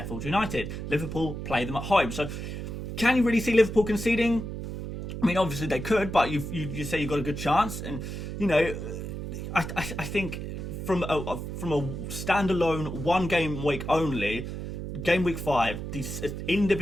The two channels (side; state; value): right; noise; hum, 6 dB below the sound